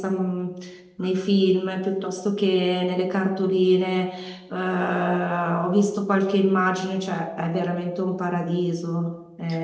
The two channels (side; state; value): both; identical; correlation 1.00